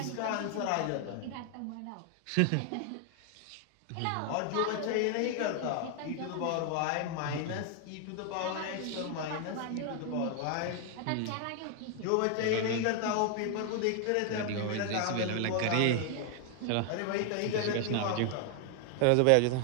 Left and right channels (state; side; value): different; both; correlation 0.00